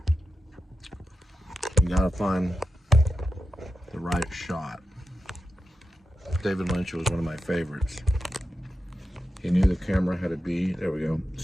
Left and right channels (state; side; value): normal; both; correlation 0.89